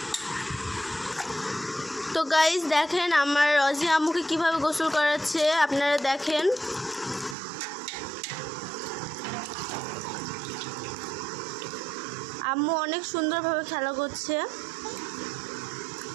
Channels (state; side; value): drops out; left; at 7.4 s